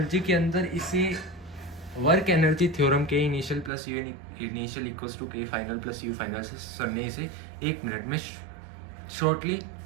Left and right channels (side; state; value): left; drops out; at 3.7 s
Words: के अंदर इसे work energy theorem K initial plus U initial equals to K final plus U final से सर ने इसे 1 मिनट में शॉर्टली